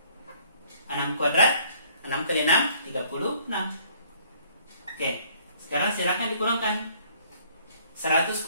6 kuadrat, 6 kali 6, 36. Oke, sekarang silakan dikurangkan. 100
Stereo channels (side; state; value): both; inverted; correlation -0.60